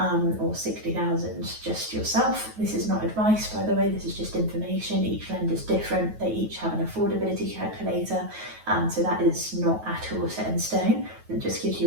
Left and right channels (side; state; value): left; late; 9.3 ms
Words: or 60,000 just yourself. This is not advice, by the way, this is just information. Each lender's different, they each have an affordability calculator, so that is not at all set in stone. It just gives